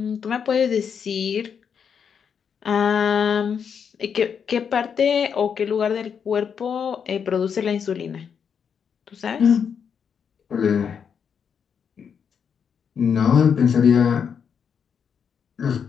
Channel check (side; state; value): right; quieter; 7.1 dB